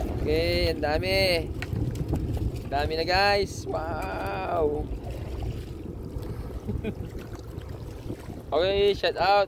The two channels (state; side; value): identical; both; correlation 1.00